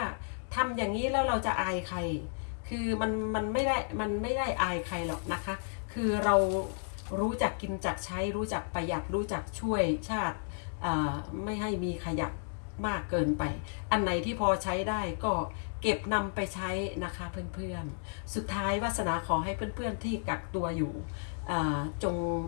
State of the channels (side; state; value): right; silent; digital silence